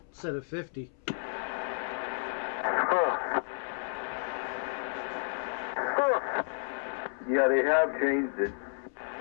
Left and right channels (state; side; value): silent; right; 57 dB below the other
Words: instead of 50. Huh. Huh. Yeah, they have changed it.